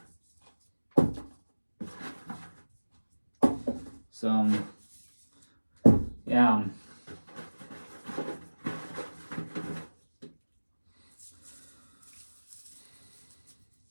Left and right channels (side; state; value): both; inverted; correlation -1.00